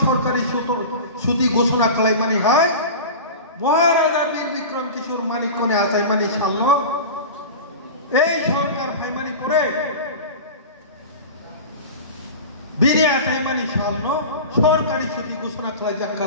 সরকারি সুতি ঘোষণা কলাই মানি হয় মহারাজা বীর বিক্রম কিশোর মানিক্য নে আসাই মানি সাল এই সরকার ভাইমানি পড়ে বীরে আসাই মানি সামন সরকারি ছুটি ঘোষণা করা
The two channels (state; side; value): inverted; both; correlation -0.31